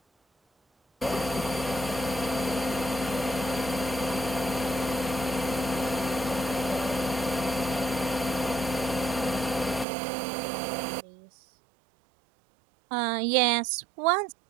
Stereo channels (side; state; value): left; drops out; at 9.9 s